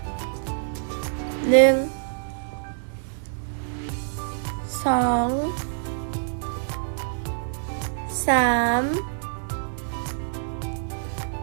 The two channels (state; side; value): silent; left; digital silence